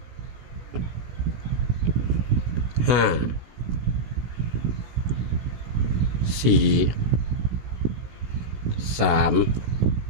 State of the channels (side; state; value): left; late; 17 ms